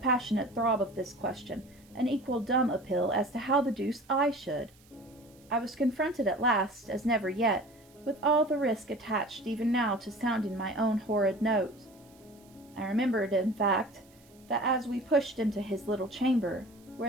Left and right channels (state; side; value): noise; right; hiss, 29 dB below the sound